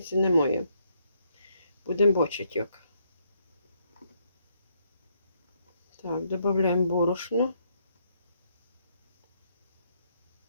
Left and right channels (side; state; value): both; inverted; correlation -0.73